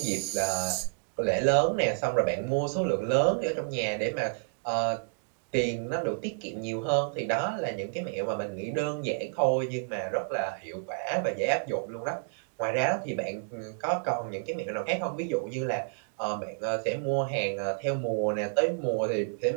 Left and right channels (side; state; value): left; silent; digital silence